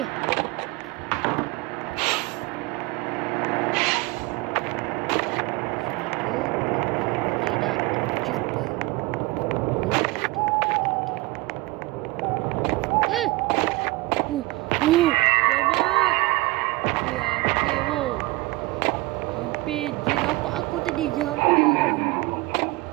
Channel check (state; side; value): quieter; left; 22.1 dB